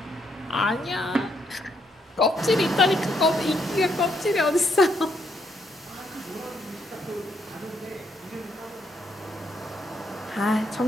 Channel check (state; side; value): normal; both; correlation 0.75